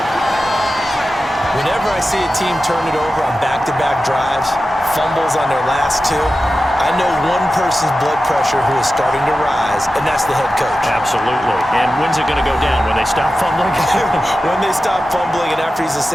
Whenever I see a team turn it over on back-to-back drives, fumbles on their last 2, I know one person's blood pressure who is starting to rise, and that's the head coach. Absolutely. And when's it going to go down? When they stop fumbling? When they stop fumbling and after he's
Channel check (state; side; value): normal; both; correlation 0.93